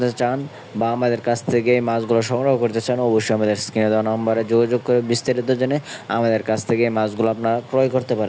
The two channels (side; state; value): both; identical; correlation 1.00